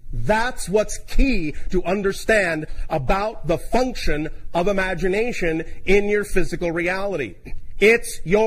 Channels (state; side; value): identical; both; correlation 1.00